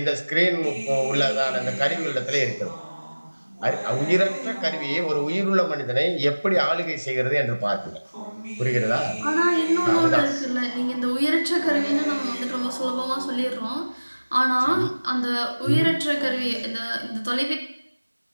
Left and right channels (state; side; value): inverted; both; correlation -1.00